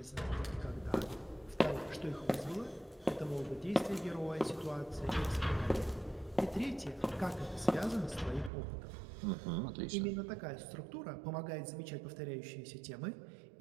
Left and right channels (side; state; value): left; drops out; at 8.5 s